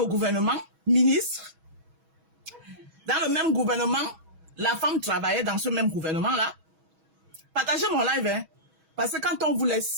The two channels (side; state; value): left; late; 6.2 ms